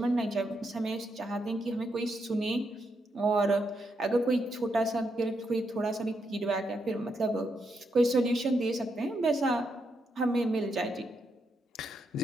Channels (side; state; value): both; normal; correlation 0.81